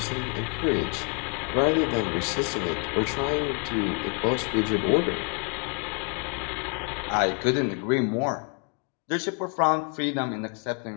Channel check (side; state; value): right; quieter; 35.8 dB